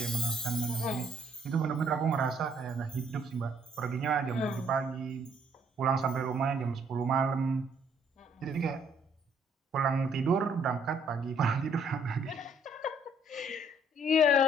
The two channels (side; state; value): both; normal; correlation 0.65